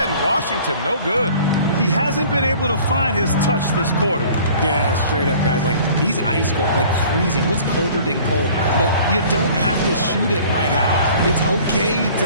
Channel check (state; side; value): inverted; both; correlation -0.49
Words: Washington, no good. He hasn't been able to find his touch this quarter. Yeah, straight up, guys. Like, he's ice cold, like freezing. What's colder than cold? But you don't have to shoot it, my guy. It's okay